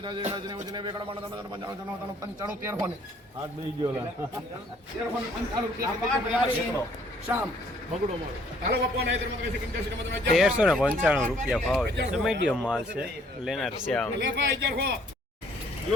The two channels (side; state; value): both; normal; correlation 0.62